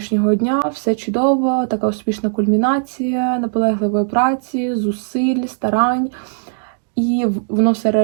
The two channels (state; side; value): silent; left; 67 dB below the other